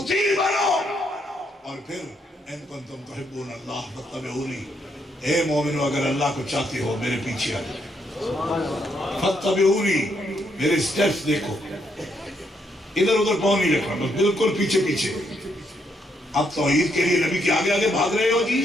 بنو۔ اور پھر ان کنتم تحبون اللہ فاتبعونی، اے مومنو اگر اللہ کو چاہتے ہو میرے پیچھے آ جاؤ، فاتبعونی، میرے سٹیپس دیکھو، ادھر ادھر پاؤں نہیں رکھنا، بس بالکل پیچھے پیچھے۔ اب توحید کے لیے نبی کے آگے آگے بھاگ رہے ہو جی،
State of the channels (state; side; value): normal; both; correlation 0.75